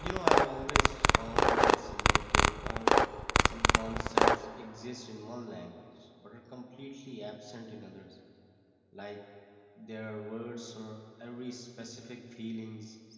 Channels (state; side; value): identical; both; correlation 1.00